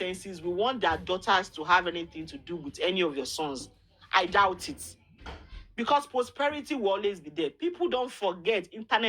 will want their daughters to have anything to do with any of your sons. I doubt it. Because prosperity will always be there. People don't forget.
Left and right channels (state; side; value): identical; both; correlation 1.00